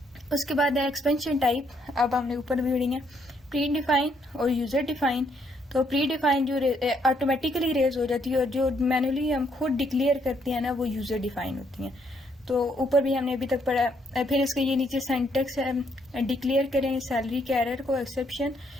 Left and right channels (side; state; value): both; normal; correlation 0.71